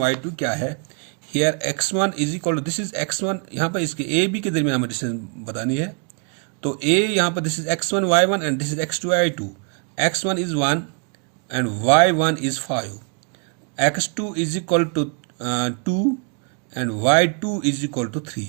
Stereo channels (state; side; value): quieter; left; 37.7 dB